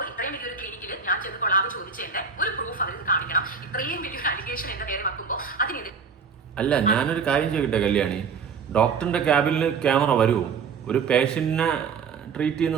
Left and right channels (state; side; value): quieter; left; 5.8 dB